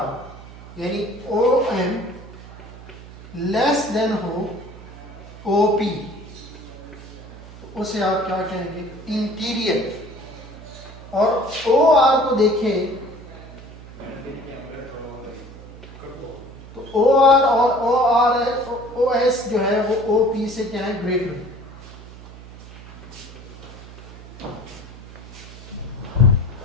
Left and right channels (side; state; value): right; noise; hum, 17 dB below the sound